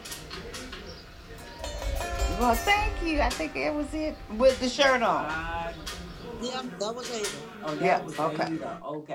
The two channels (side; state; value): both; identical; correlation 1.00